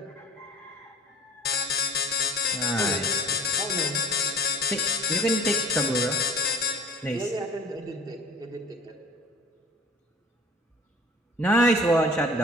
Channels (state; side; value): normal; both; correlation 0.45